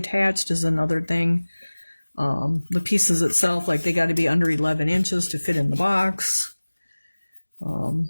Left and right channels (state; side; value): inverted; both; correlation -1.00